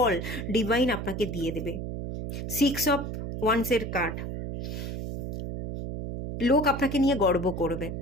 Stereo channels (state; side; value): noise; right; hum, 5 dB below the sound